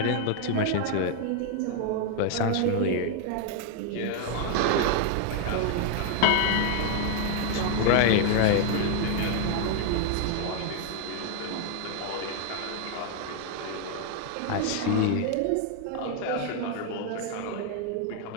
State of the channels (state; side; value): different; both; correlation 0.01